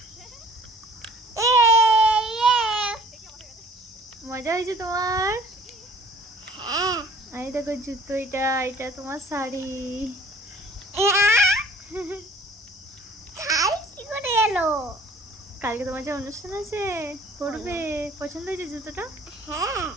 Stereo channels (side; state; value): both; normal; correlation 0.53